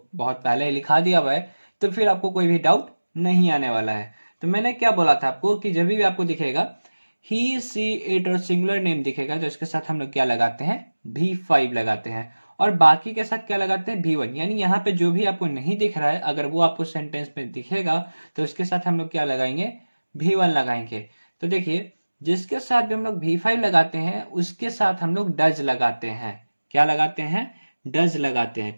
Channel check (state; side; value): inverted; both; correlation -1.00